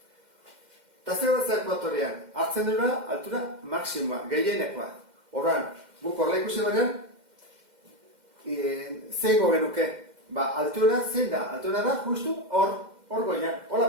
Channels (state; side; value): late; left; 2.1 ms